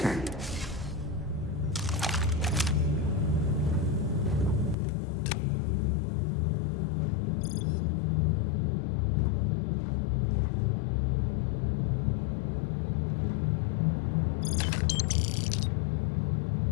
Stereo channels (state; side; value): drops out; right; at 4.8 s